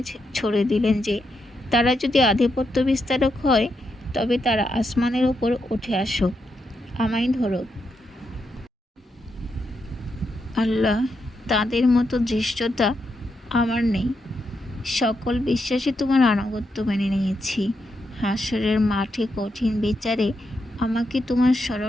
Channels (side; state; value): both; normal; correlation 0.83